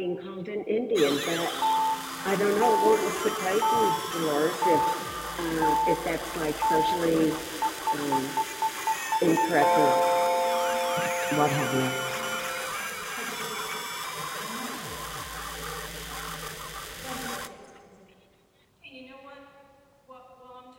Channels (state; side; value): identical; both; correlation 1.00